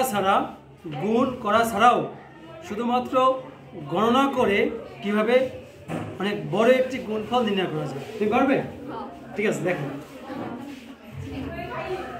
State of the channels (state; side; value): identical; both; correlation 1.00